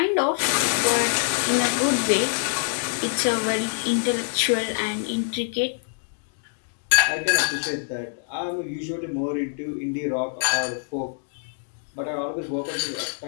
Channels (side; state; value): right; silent; digital silence